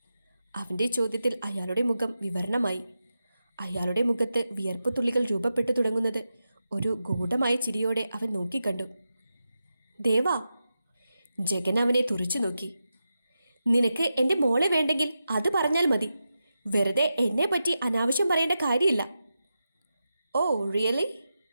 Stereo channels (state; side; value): inverted; both; correlation -0.89